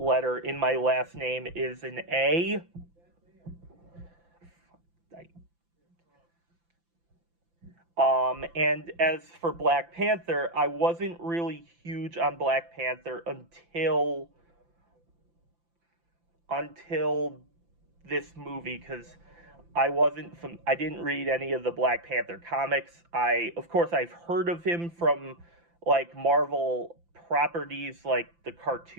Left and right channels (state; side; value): late; left; 5.9 ms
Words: in my last name is an A. And as for Black Panther, I wasn't really huge on Black Panther until this movie, because I didn't read any of the Black Panther comics. Of course, I've heard of him from like Marvel properties, like the